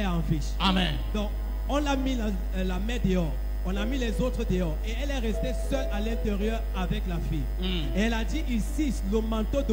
en vie. Amen. Donc, on l'a mis la mère dehors. On a mis les autres dehors. Et elle est restée seule à l'intérieur avec la fille. Et elle a dit ici, le manteau de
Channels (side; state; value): both; identical; correlation 1.00